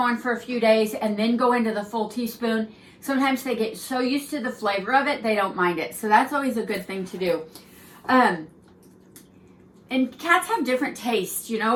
for a few days and then go into the full teaspoon, sometimes they get so used to the flavor of it they don't mind it. So that's always a good thing to do. And cats have different tastes,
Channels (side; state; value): both; identical; correlation 1.00